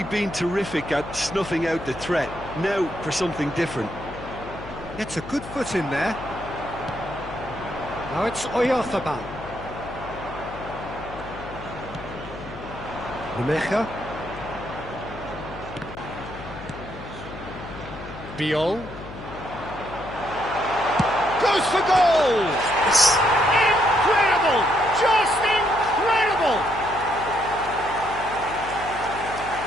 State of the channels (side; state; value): left; noise; hum, 13 dB below the sound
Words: been terrific at snuffing out the threat. Now for something different. Gets a good foot in there. Now it's Oyarzabal. Rumecha. Biol. Goes for goal! Incredible! Just incredible!